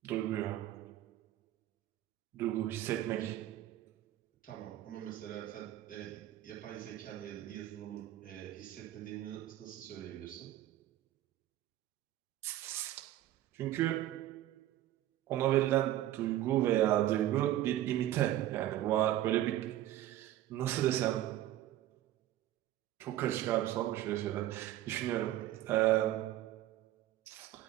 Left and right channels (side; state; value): left; quieter; 13.7 dB